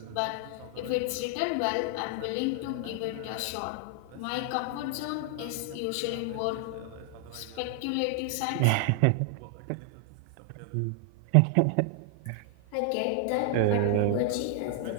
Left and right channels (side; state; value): both; different; correlation 0.00